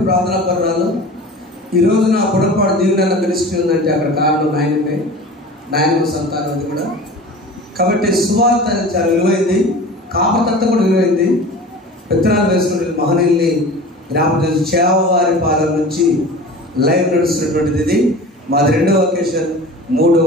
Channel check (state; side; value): normal; both; correlation 0.37